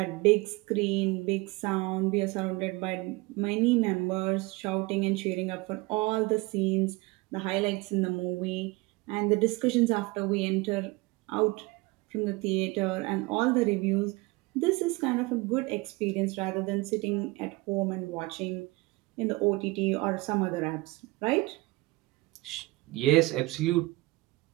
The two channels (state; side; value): quieter; left; 22.6 dB